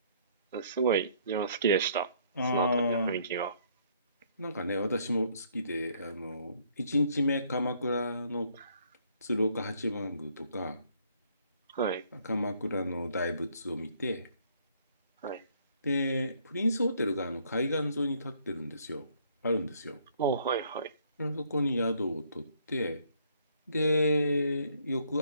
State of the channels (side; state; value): both; inverted; correlation -0.65